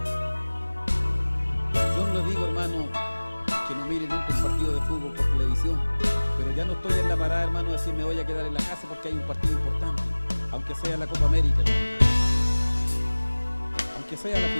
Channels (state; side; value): inverted; both; correlation -1.00